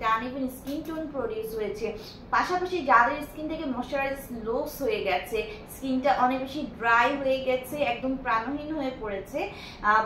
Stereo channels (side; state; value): both; identical; correlation 1.00